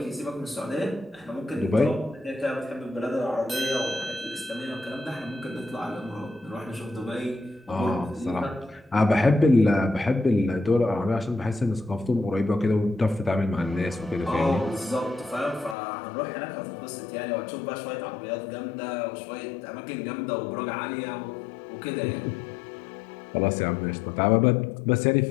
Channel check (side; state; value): right; drops out; at 15.8 s